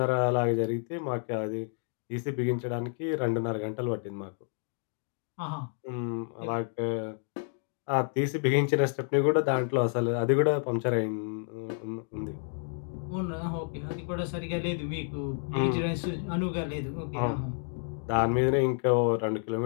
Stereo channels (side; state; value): right; silent; 58 dB below the other